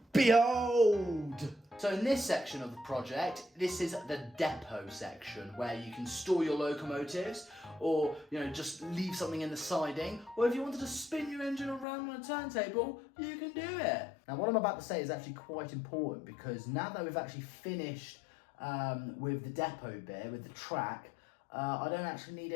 Behold! So in this section of the project, this is the depot section where you can store your locomotives, or just leave something in the siding, or if you wanted to spin your engine around on a turntable, you can do it. Now what I'm about to say is actually quite important, because now that we've actually finished with the depot bit, with the track, I don't actually need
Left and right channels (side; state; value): right; drops out; at 11.9 s